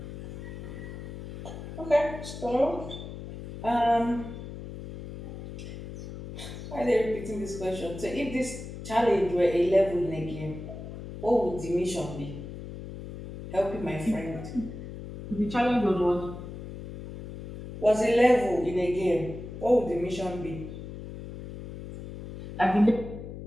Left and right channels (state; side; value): noise; left; hum, 10 dB below the sound